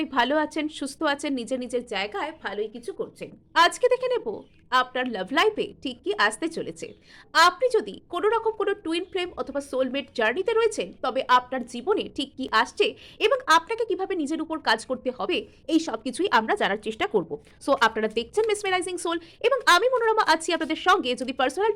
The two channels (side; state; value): both; identical; correlation 1.00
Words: ভালো আছেন, সুস্থ আছেন, নিজের নিজের জায়গায় ভালোই কিছু করছেন। আজকে দেখে নেব আপনার লাভ লাইফে ঠিক কি আসতে চলেছে। আপনি যদি কোনো রকম কোনো টুইন ফ্লেম অথবা সোলমেট জার্নিতে রয়েছেন, তবে আপনার জীবনে ঠিক কি আসছে এবং আপনাকে কিভাবে নিজের উপর কাজ করতে হবে, এই সব কিছুই আমরা জানার চেষ্টা করব। সো আপনারা দেখছেন মেসমেরাইজিং সোল এবং আমি মনোরমা আছি আপনাদের সঙ্গে। যদি পার্সোনাল